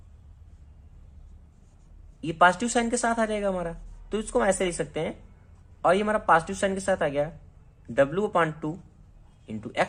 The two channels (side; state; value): both; identical; correlation 1.00